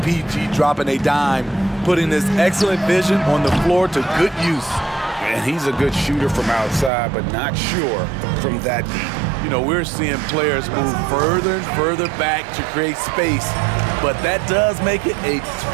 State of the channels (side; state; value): left; drops out; at 6.9 s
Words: dropping a dime, putting his excellent vision on the floor to good use. And he's a good shooter from outside, but not sure from that deep. You know, we're seeing players move further and further back to create space, but that does make it a